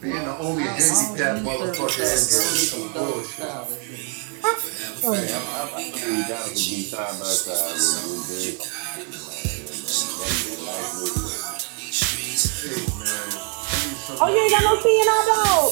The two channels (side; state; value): left; quieter; 39.2 dB